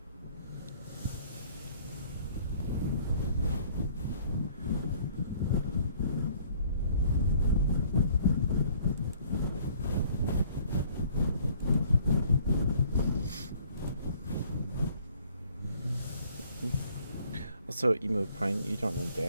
Also, Emo Pine, you don't know the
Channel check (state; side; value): inverted; both; correlation -0.58